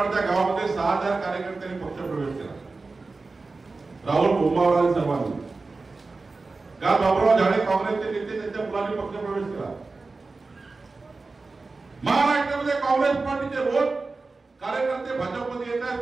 त्या गावामध्ये 6000 कार्यकर्त्यांनी पक्ष प्रवेश केला. राहुल बोंबावळा आणि सर्वांनी. काल बाबुराव झाडे काँग्रेसचे नेते त्यांच्या मुलांनी पक्ष प्रवेश केला. महाराष्ट्रामध्ये काँग्रेस पार्टीचे रोज कार्यकर्ते भाजपमध्ये येत आहेत,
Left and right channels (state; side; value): quieter; left; 3.8 dB